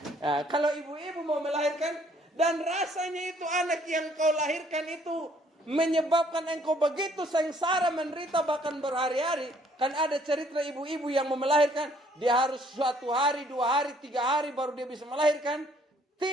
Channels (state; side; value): normal; both; correlation 0.63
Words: Nah, kalau ibu-ibu mau melahirkan dan rasanya itu anak yang kau lahirkan itu menyebabkan engkau begitu sengsara, menderita bahkan berhari-hari. Kan ada cerita ibu-ibu yang mau melahirkan, dia harus suatu hari, 2 hari, 3 hari baru dia bisa melahirkan.